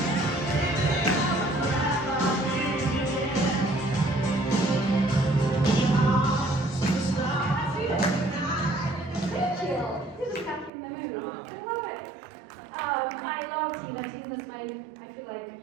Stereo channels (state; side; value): drops out; left; at 10.7 s